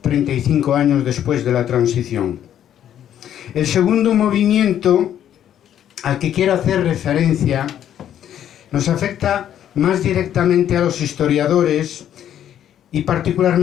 años después de la transición. El segundo movimiento al que quiero hacer referencia nos afecta más directamente a los historiadores y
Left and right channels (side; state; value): right; quieter; 10.5 dB